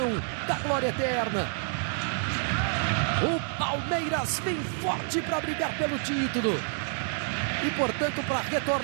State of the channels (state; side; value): silent; left; 59 dB below the other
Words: da glória eterna. O Palmeiras vem forte para brigar pelo título. E, portanto, para